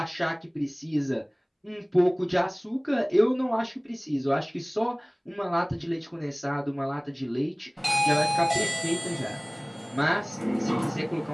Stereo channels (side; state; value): both; identical; correlation 1.00